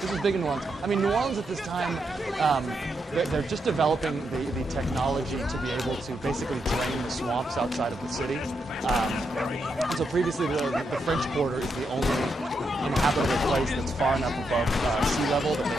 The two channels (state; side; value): normal; both; correlation 0.82